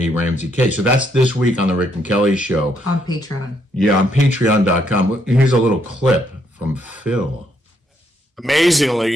Ramsey case. So that's this week on the Rick and Kelly Show. On Patreon. Yeah, on patreon.com. Here's a little clip from Phil.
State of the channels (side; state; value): both; normal; correlation 0.74